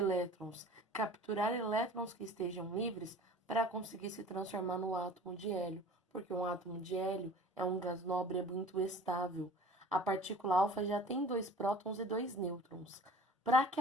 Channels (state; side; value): normal; both; correlation 0.44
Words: Capturar elétrons que estejam livres para conseguir se transformar no átomo de hélio. Porque um átomo de hélio é um gás nobre, é muito estável. A partícula alfa já tem 2 prótons e 2 nêutrons. Para que